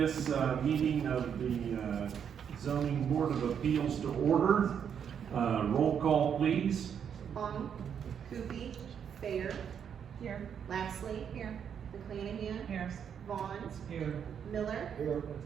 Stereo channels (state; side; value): quieter; left; 8.0 dB